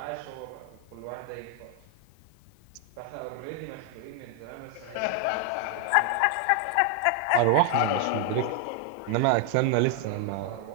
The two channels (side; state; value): both; different; correlation 0.00